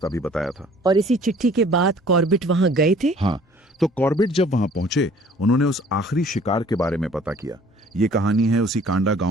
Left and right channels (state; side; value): normal; both; correlation 0.54